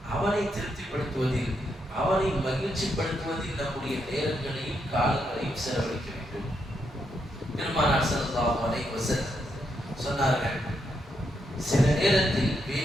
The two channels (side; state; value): both; normal; correlation 0.80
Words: அவனை திருப்திப்படுத்துவதில், அவனை மகிழ்ச்சிப்படுத்துவதில் நம்முடைய நேரங்களையும் காலங்களையும் செலவழிக்க வேண்டும். பெருமானார் ஸல்லல்லாஹு அலைஹி வஸல்லம் சொன்னார்கள், சில நேரத்தில்